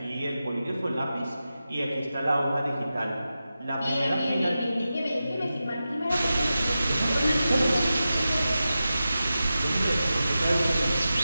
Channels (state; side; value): inverted; both; correlation -0.92